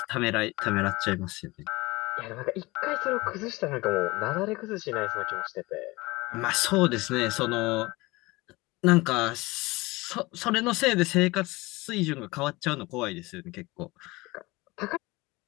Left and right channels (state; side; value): quieter; right; 22.0 dB